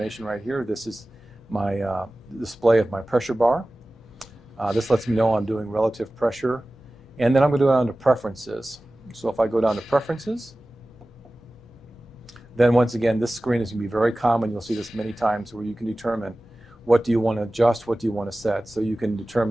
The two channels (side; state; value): both; normal; correlation 0.97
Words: right here. This is my display of my pressure bar. This lets me know I'm doing relative pressure. And then I'm going to go down to preferences. So if I go down to preferences, then once again, this screen is going to be very common. You'll see this many times where you can determine what do you want to adjust, what do you want to set. So you can